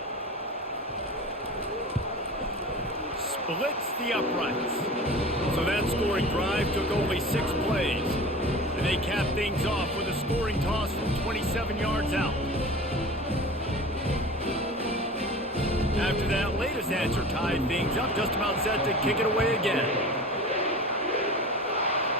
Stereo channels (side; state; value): both; normal; correlation 0.36